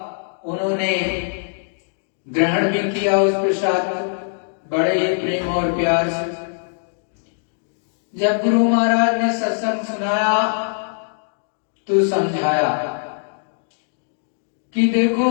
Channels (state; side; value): silent; right; digital silence